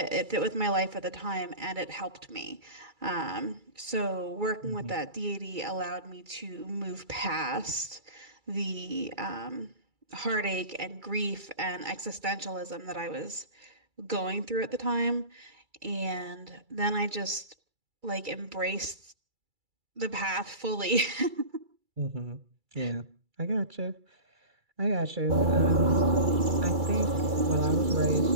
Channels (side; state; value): left; late; 2.3 ms